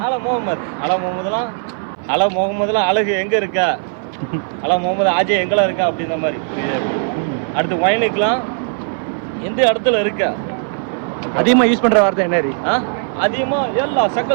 அலா முகமதுலாம் அழகு எங்க இருக்கா அலா முகமது ஆஜய் எங்கெல்லாம் இருக்கா அப்படின்ற மாதிரி அடுத்து ஒயினுக்குலாம் எந்த இடத்துல இருக்கா அதிகமாக யூஸ் பண்ணுற வார்த்தை என்ன அதிகமா எல்லாம்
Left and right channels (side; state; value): left; silent; 57 dB below the other